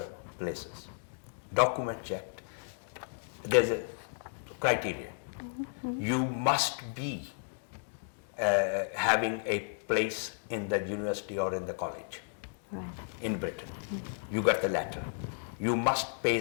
places. Document checked. There's a criteria. You must be having a place in the university or in the college in Britain. You got the letter. You must pay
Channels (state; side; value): silent; right; digital silence